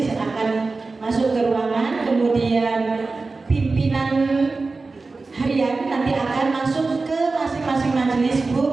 akan masuk ke ruangan, kemudian pimpinan harian nanti akan masuk ke masing-masing majelis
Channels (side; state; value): left; quieter; 3.8 dB